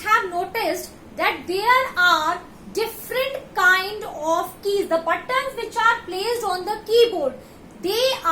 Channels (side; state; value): both; identical; correlation 1.00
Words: noticed that there are different kind of keys. The buttons which are placed on the keyboard, they